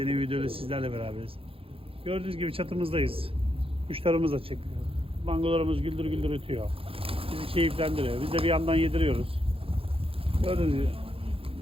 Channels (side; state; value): left; late; 0.27 ms